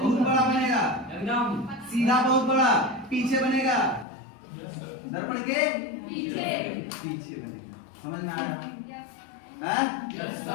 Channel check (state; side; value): drops out; right; at 4.0 s